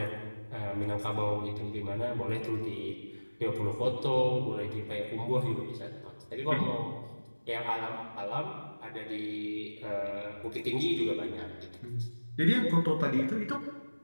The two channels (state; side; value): inverted; both; correlation -1.00